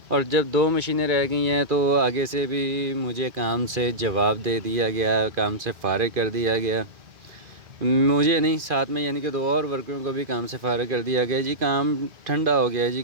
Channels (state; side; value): late; left; 2.4 ms